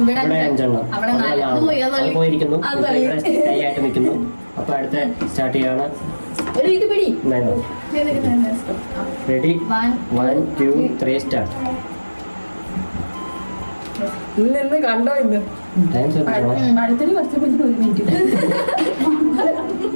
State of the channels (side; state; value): both; inverted; correlation -1.00